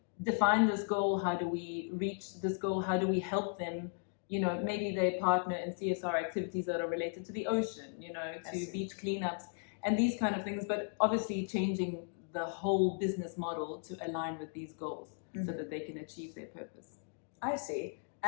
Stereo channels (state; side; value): silent; right; 54 dB below the other